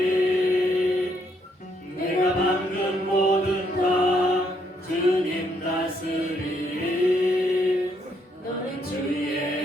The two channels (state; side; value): normal; both; correlation 0.73